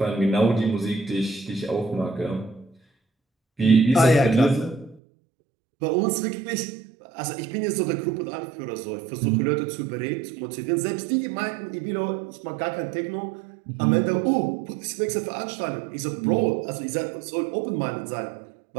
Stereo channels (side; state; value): left; drops out; at 5.0 s